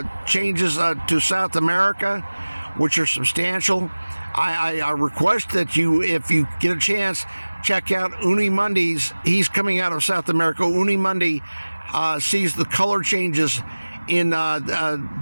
changes to South America, which are substantial. I request that you, if you get a chance, check out Uni Mundi's. He's coming out of South America. Uni Mundi sees the color changes in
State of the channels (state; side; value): inverted; both; correlation -1.00